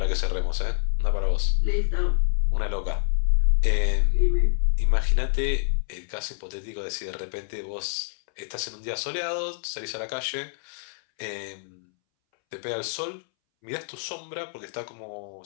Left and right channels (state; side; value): silent; right; 61 dB below the other